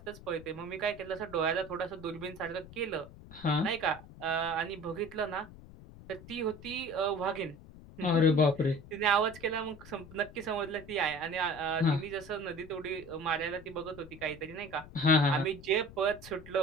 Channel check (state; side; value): noise; left; rumble, 18 dB below the sound